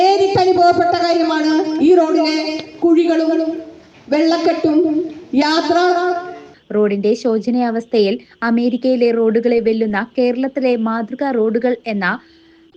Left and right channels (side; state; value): both; identical; correlation 1.00